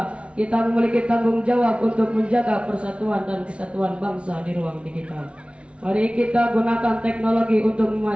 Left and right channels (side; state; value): left; late; 0.060 ms